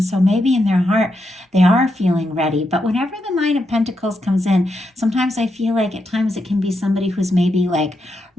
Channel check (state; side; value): normal; both; correlation 0.83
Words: so maybe in their heart, they are feeling ready. But whenever the Nine of Pentacles comes in, sometimes I feel like at times it can be somebody who's maybe like